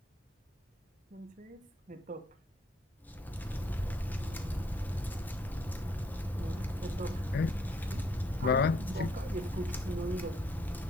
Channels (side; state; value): both; normal; correlation 0.68